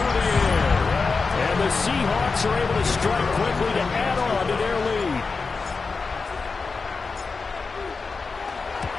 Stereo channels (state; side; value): quieter; right; 4.4 dB